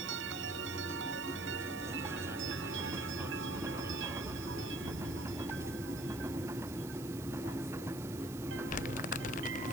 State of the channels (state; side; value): noise; right; hiss, 13 dB below the sound